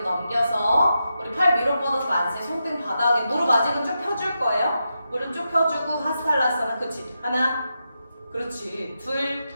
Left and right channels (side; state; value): both; inverted; correlation -0.87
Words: 넘겨서 우리 팔 위로 뻗어서 만세. 손등 바닥에 무릎 아직은 쭉 펴줄 거예요. 무릎 쭉 펴주고 하스탈라사나. 그렇지. 하나, 그렇지. 둘,